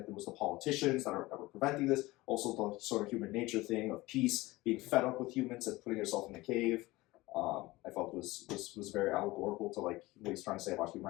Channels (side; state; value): right; quieter; 20.0 dB